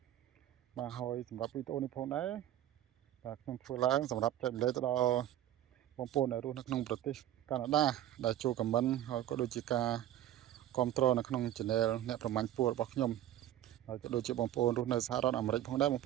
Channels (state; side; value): quieter; left; 12.7 dB